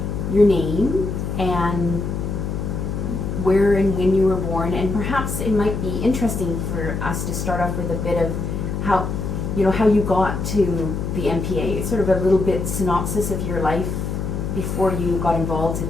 your name and where and when you were born, and perhaps it might be interesting for us to start off with a bit of how you got to the MPA, sort of a little bit synopsis of your life before you got involved in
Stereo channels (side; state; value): left; noise; hum, 3 dB below the sound